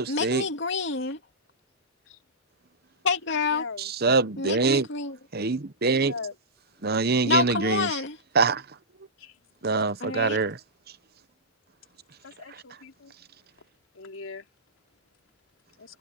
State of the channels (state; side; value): normal; both; correlation -0.16